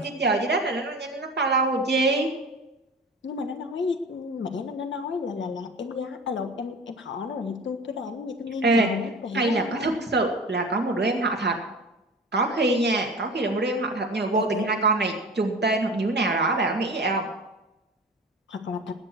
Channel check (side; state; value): both; normal; correlation 0.36